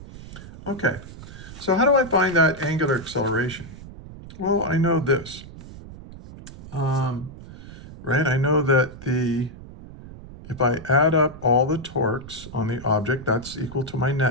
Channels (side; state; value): right; noise; rumble, 15 dB below the sound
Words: okay. So how do I find that angular acceleration? Well, I know this, right? I know that if I add up all the torques on the object, that's equal to my